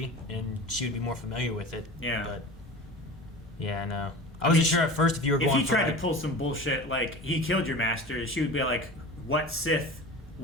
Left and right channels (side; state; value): both; normal; correlation 0.35